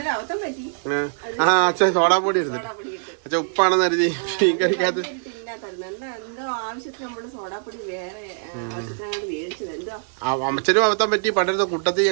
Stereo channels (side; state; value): left; silent; digital silence